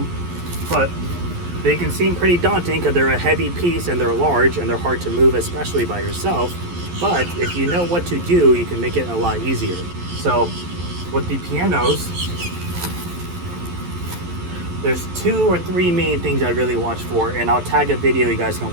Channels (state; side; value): late; left; 11 ms